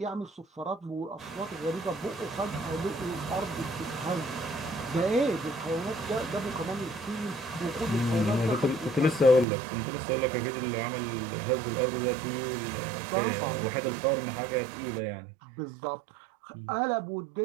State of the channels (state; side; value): drops out; left; at 9.5 s